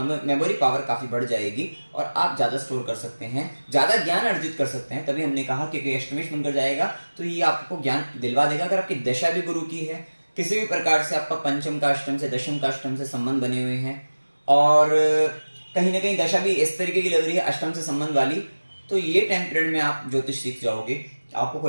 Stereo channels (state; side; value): inverted; both; correlation -1.00